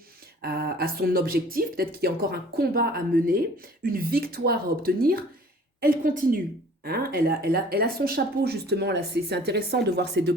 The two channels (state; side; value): normal; both; correlation 0.50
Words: à son objectif, peut-être qu'il y a encore un combat à mener, une victoire à obtenir, elle continue. Hein, elle a son chapeau justement, là c'est intéressant de voir ces deux